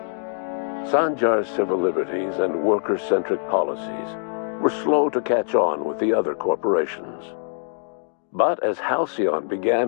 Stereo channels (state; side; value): silent; right; digital silence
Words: Sanjar's civil liberties and worker-centric policies were slow to catch on with the other corporations. But as Halcyon